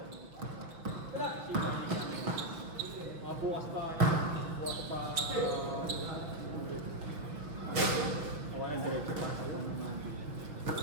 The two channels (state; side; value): late; left; 6.0 ms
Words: Bukas pa. Walang diretso pa sa